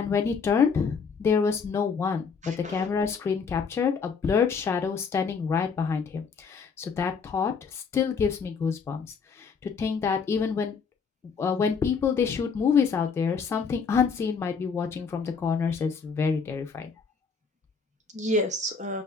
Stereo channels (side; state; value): right; quieter; 5.5 dB